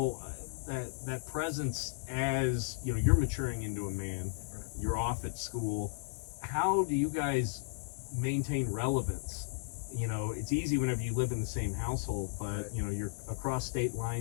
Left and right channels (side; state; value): right; silent; digital silence